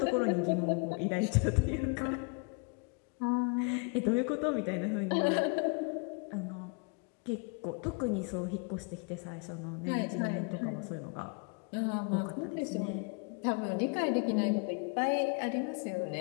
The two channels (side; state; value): right; quieter; 33.1 dB